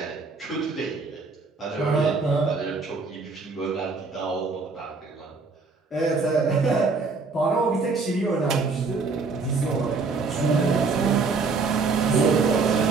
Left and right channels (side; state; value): left; quieter; 4.3 dB